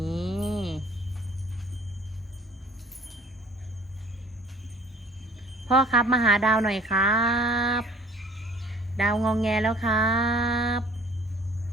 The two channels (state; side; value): normal; both; correlation 0.52